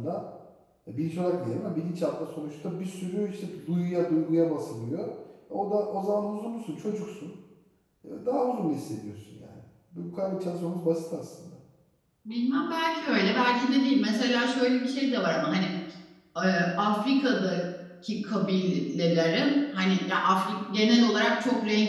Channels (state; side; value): identical; both; correlation 1.00